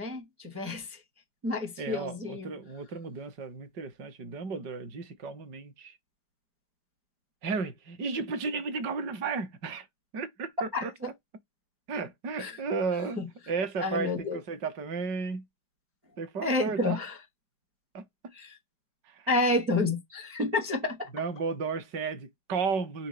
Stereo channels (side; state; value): left; late; 5.0 ms